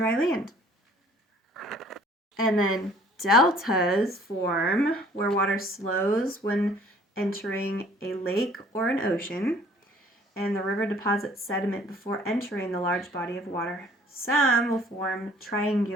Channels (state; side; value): normal; both; correlation 0.56